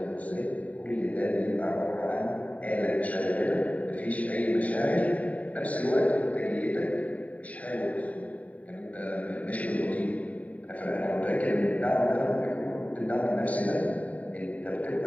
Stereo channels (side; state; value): right; late; 0.069 ms